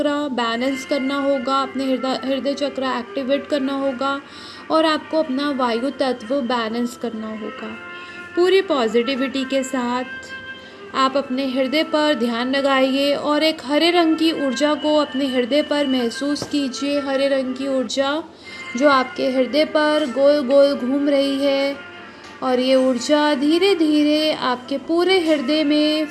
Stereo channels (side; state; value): both; identical; correlation 1.00